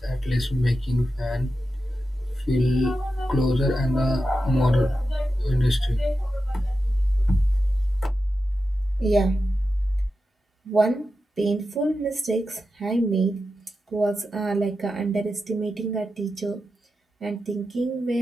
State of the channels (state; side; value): normal; both; correlation 0.90